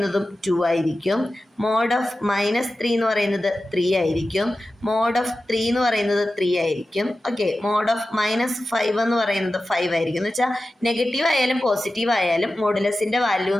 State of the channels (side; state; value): both; normal; correlation 0.94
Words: 2 ആയിരിക്കും, മോഡ് ഓഫ് -3 എന്ന് പറയുന്നത് 3 ആയിരിക്കും, മോഡ് ഓഫ് 3 എന്ന് പറയുന്നത് 3 ആയിരിക്കും. ഓക്കെ, മോഡ് ഓഫ് -5 എന്ന് പറയുന്നത് 5 ആയിരിക്കും. എന്ന് വെച്ചാൽ നെഗറ്റീവ് ആയാലും പോസിറ്റീവ് ആയാലും മോഡുലസിൻ്റെ വാല്യൂ